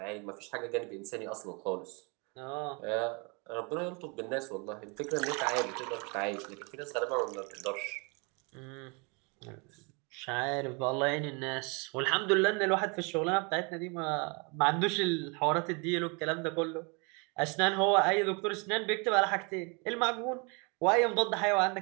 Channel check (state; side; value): quieter; left; 32.2 dB